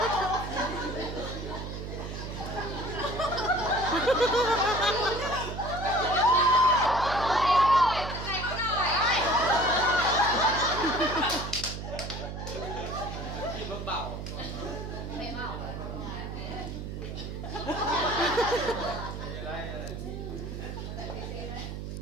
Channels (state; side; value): noise; right; hum, 7 dB below the sound